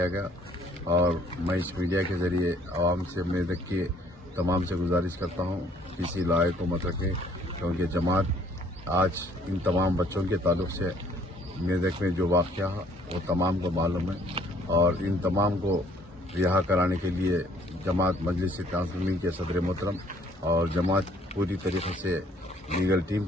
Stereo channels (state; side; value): normal; both; correlation 0.61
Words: گیا. اور میں اس میڈیا کے ذریعے عوام سے میدک کے تمام سے گزارش کرتا ہوں کسی لائر کو مت رکھیں کیونکہ جماعت آج ان تمام بچوں کے تعلق سے میدک میں جو واقعہ وہ تمام کو معلوم ہے اور ان تمام کو رہا کرانے کے لیے جماعت مجلس تنظیمی کے صدر محترم اور جماعت پوری طریقے سے لیگل ٹیم